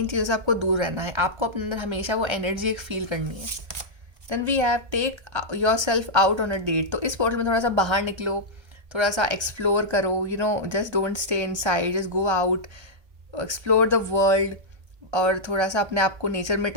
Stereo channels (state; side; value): late; left; 1.3 ms